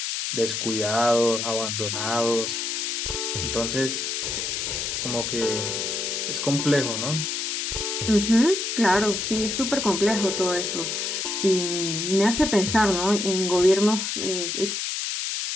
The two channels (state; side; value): noise; left; hiss, 2 dB below the sound